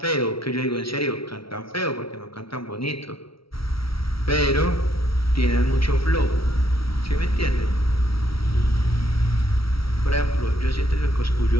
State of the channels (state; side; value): late; right; 0.75 ms